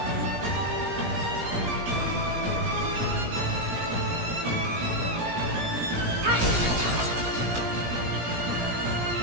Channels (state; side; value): late; left; 17 ms